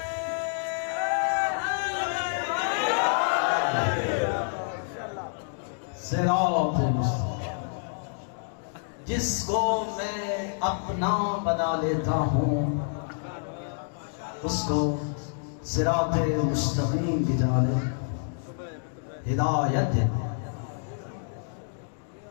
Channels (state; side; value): silent; right; digital silence